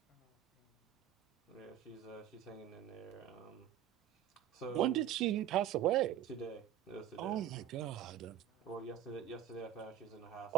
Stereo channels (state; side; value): quieter; left; 10.8 dB